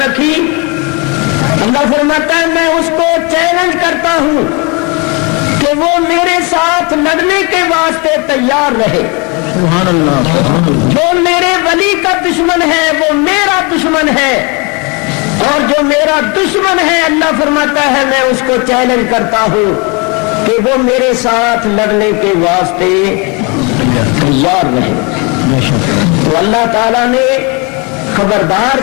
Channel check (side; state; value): right; quieter; 30.2 dB